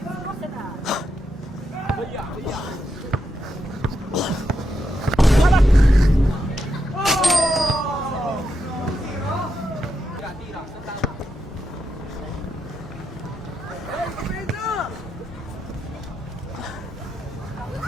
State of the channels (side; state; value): both; normal; correlation 0.84